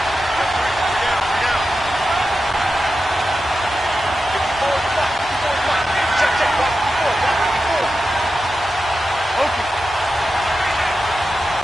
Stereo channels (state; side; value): normal; both; correlation 0.91